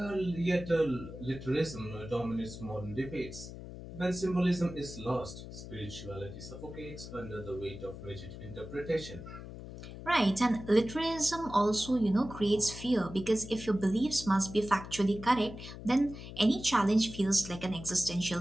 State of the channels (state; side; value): noise; left; hum, 12 dB below the sound